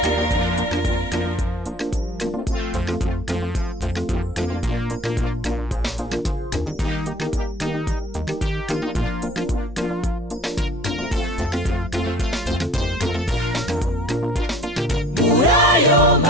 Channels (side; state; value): both; normal; correlation 0.52